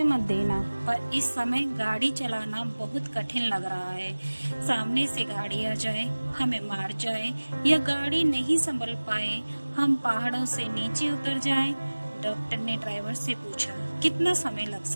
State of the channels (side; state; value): both; inverted; correlation -1.00